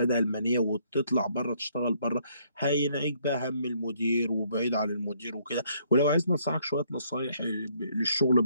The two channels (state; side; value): inverted; both; correlation -0.67